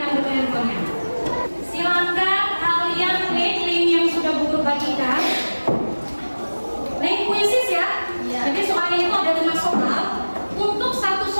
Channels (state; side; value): inverted; both; correlation -1.00